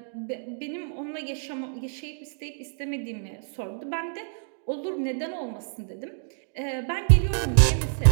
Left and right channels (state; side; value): silent; left; digital silence